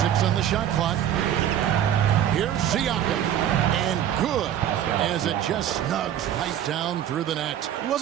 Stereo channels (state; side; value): quieter; left; 10.5 dB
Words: 6 on the shot clock. Here's Siakam. And good, as it just snugs right down through the net. He